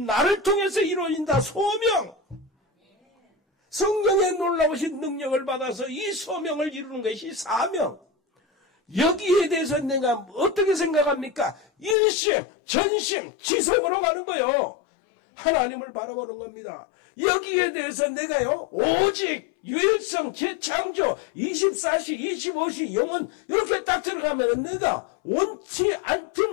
통해서 이루어진다. 소명. 성령의 놀라우신 능력을 받아서 이 소명을 이루는 것이 사명. 여기에 대해서 내가 어떻게 생각합니까? 일심, 전심, 지성으로 가는 거예요. 하나님을 바라보는 겁니다. 여기에 대해서 내가요, 오직 유일성, 재창조, 24시, 25시, 영혼 이렇게 딱 들어가면 내가 원치 않든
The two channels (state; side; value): drops out; right; at 12.0 s